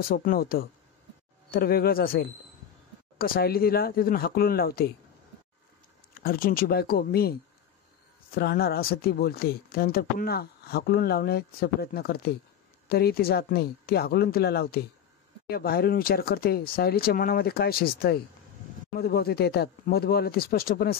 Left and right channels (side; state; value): right; quieter; 9.0 dB